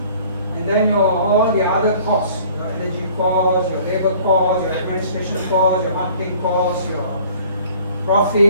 and then all the other costs, your energy cost, your labor cost, your administration cost, your marketing cost, your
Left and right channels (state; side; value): inverted; both; correlation -0.52